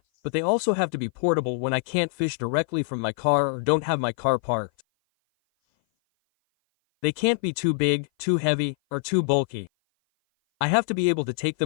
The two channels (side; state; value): right; silent; 57 dB below the other